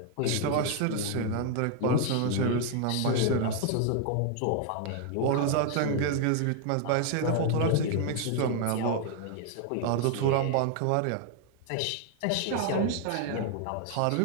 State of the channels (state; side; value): different; both; correlation 0.00